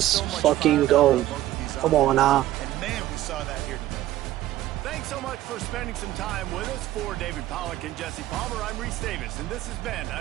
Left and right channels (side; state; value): left; quieter; 14.5 dB